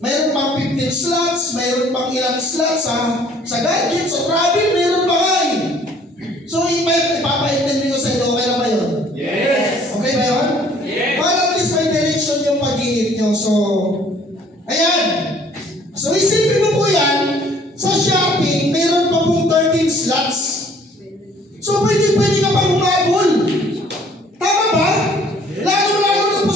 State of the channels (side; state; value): both; normal; correlation 0.57